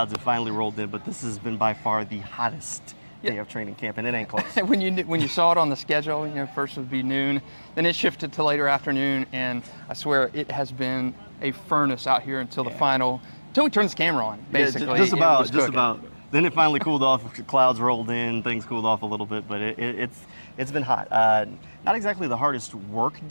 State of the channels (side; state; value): both; inverted; correlation -1.00